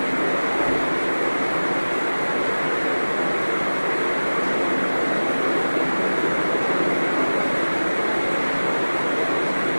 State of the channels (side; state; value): both; inverted; correlation -1.00